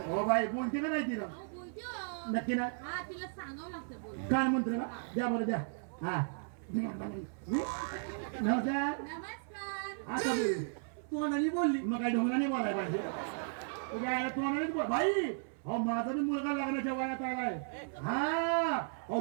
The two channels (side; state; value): left; silent; 54 dB below the other